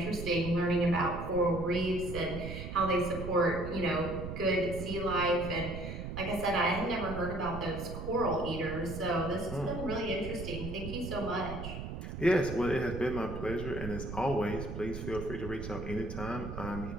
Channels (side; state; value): right; noise; rumble, 7 dB below the sound